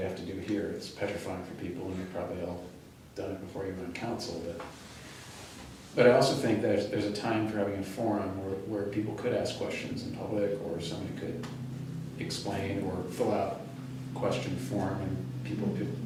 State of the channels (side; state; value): both; identical; correlation 1.00